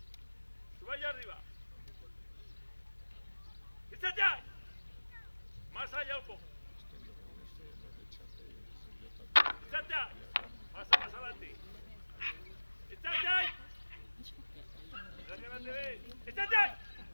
Suba allá arriba. Itxateai. Más allá un poco. Itxateai. Pasa más adelante. Itxateai. Mira que no te ves. Itxateai.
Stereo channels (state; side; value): inverted; both; correlation -1.00